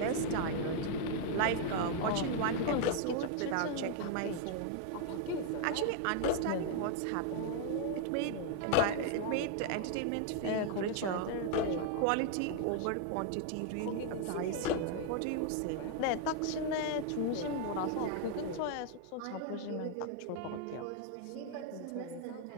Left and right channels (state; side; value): different; both; correlation 0.00